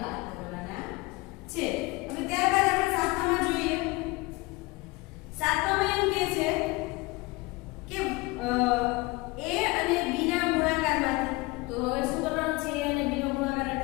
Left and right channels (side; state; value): right; quieter; 23.5 dB